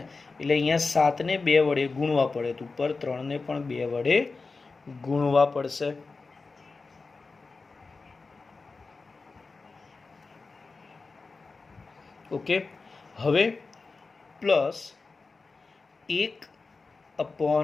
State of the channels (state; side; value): quieter; right; 4.1 dB